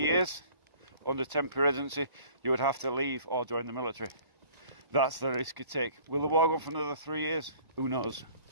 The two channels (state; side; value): late; left; 1.0 ms